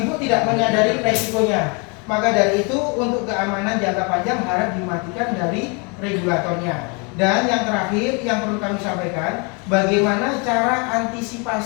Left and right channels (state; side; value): quieter; right; 32.7 dB